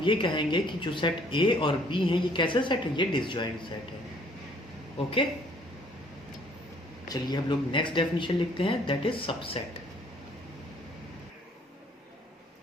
ये कहेंगे कि जो सेट ए और बी है ये कैसे सेट है, ये डिसजॉइंट सेट है। ओके, चलिए हम लोग नेक्स्ट डेफिनेशन लिखते हैं, that is subset.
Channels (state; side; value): normal; both; correlation 0.60